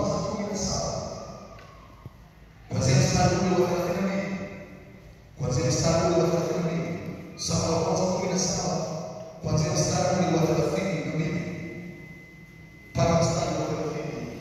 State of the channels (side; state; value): both; identical; correlation 1.00